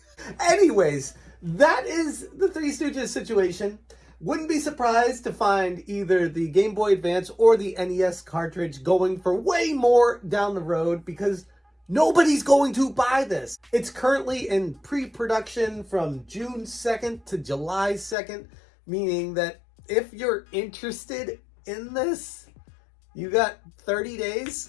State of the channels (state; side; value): drops out; right; at 18.2 s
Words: Anyways, that is the Three Stooges situation. Wouldn't be surprised to find either the Game Boy Advance or the NES cartridge going for way more down the road because nobody's going to buy this. It's currently in pre-production from June 2nd to July 2nd, meaning that if you're interested in this, you got 30